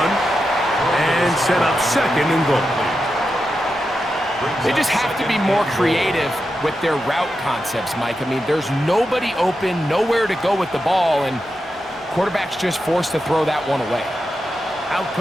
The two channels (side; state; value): both; normal; correlation 0.88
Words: and set up second and goal. They just have to be more creative with their route concepts, Mike. I mean, there's nobody open, nowhere to go with the ball, and quarterback's just forced to throw that one away. Out